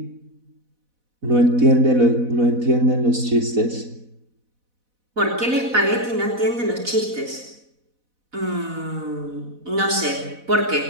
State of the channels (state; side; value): late; left; 4.1 ms